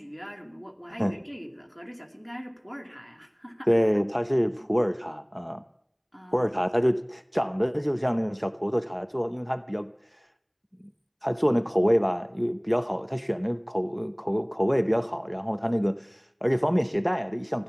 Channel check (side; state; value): both; identical; correlation 1.00